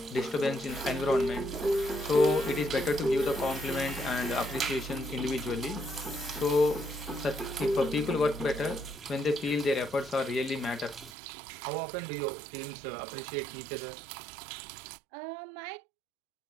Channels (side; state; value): left; drops out; at 11.1 s